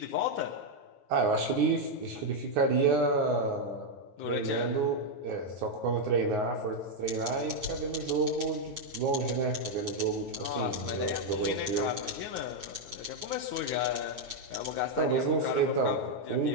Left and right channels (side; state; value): left; late; 9.6 ms